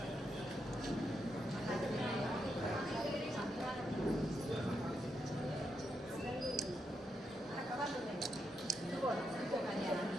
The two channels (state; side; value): normal; both; correlation 0.82